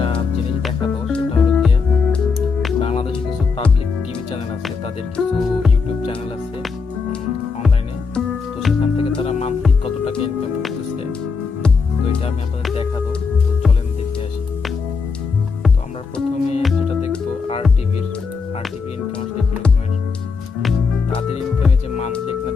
জিনিস দেখাবো। সেটা হলো গিয়ে বাংলাদেশে কিছু পাবলিক টিভি চ্যানেল আছে, তাদের কিছু ইউটিউব চ্যানেল আছে অনলাইনে। তো সেখান থেকে তারা মান্থলি কত টাকা ইনকাম করতেছে, তো এটা আমি আপনাদের দেখাবো। তো চলেন দেখে আসি। তো আমরা প্রথমে যেটা দেখবো আর টিভির ইনকাম আসলে কিরকমের। তাদের ইনকামে যে মান্থলি এখানে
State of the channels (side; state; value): right; quieter; 5.1 dB